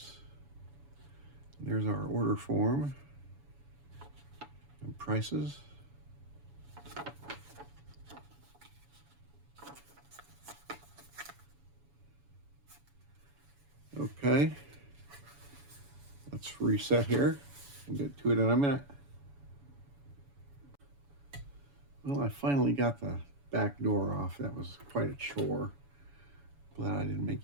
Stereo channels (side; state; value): left; late; 7.1 ms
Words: There's our order form and prices. Okay, let's reset here. We'll get to it in a minute. Well, I finally got the back door off. That was quite a chore. Glad I didn't make